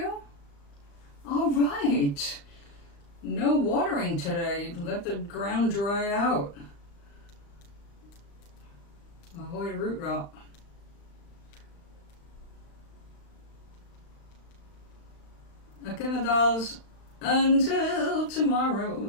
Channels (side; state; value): right; late; 35 ms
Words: All right. No watering today. Let the ground dry out. Avoid root rot. Okay, my dolls. Until tomorrow.